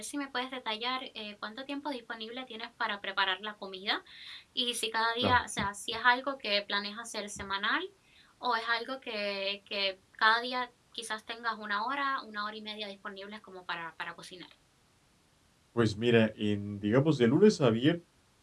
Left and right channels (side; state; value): both; identical; correlation 1.00